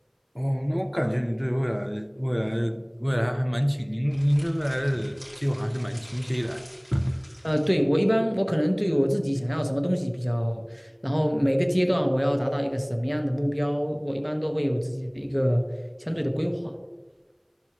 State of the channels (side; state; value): both; identical; correlation 1.00